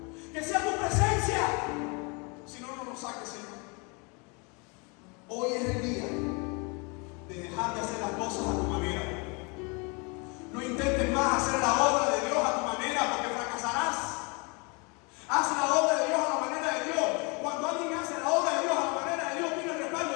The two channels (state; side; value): quieter; right; 31.2 dB